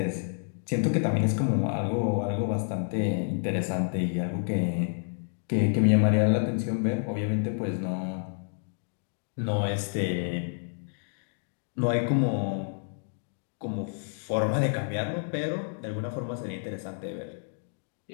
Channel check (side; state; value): right; silent; digital silence